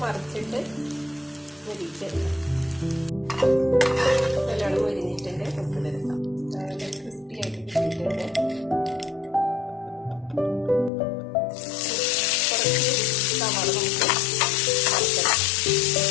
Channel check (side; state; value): right; drops out; at 10.9 s